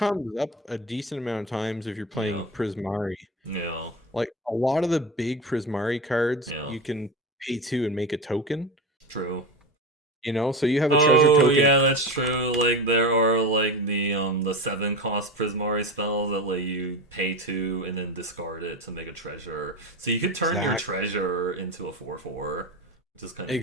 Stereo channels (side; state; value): both; normal; correlation 0.24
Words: up a decent amount of times if you're yeah, playing Prismari. yeah, Like a lot of the big Prismari cards, yeah. you can pay 2 and make a token, True. so you have a treasure Oh token. yeah, that's true. Like there are like the 7 cost Prismari spells that let you pay 2 and then discard it to make a treasure. So you could turn your Exactly. treasure into a 4/4, which is kind of neat.